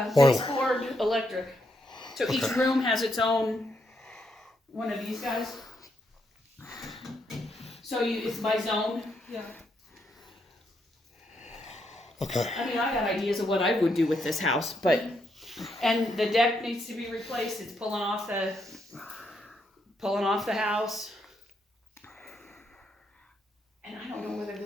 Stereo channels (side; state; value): both; normal; correlation 0.77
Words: Ford electric. So each room has its own one of these guys. So it's by zone. Yeah. Okay. I mean, I got ideas of what I would do with this house, and the deck needs to be replaced. It's pulling off the house. And I don't know whether